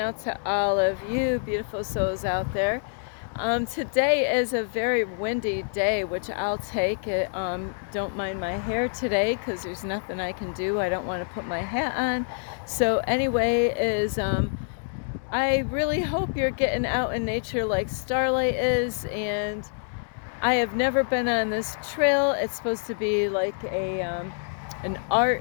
to all of you beautiful souls out there. Today is a very windy day, which I'll take it. Don't mind my hair today because there's nothing I can do. I don't want to put my hat on. So anyway, I really hope you're getting out in nature like Starlight is, and I have never been on this trail. It's supposed to be like an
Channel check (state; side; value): silent; right; digital silence